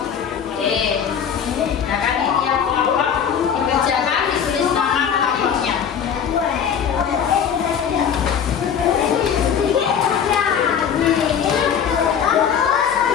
Oke. Nah kan ini yang kelompok dikerjakan, ditulis nama kelompoknya.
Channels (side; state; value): right; quieter; 7.8 dB